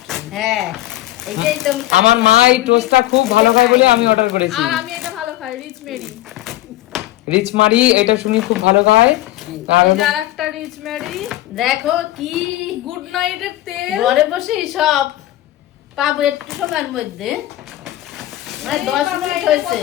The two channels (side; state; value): right; quieter; 15.5 dB